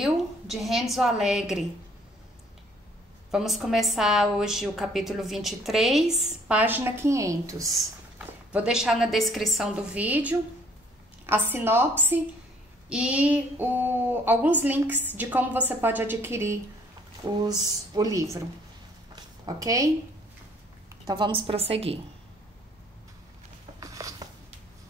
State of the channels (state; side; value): normal; both; correlation 0.61